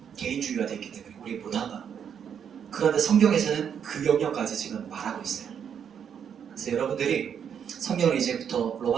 개인주의가 됐기 때문에 우리 못한다. 그런데 성경에서는 그 영역까지 지금 말하고 있어요. 그래서 여러분들이 성경을 이제부터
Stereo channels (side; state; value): left; quieter; 8.0 dB